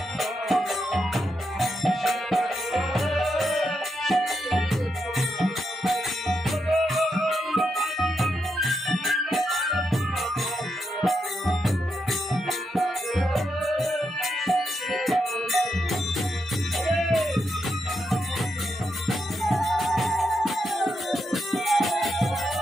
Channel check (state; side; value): normal; both; correlation 0.83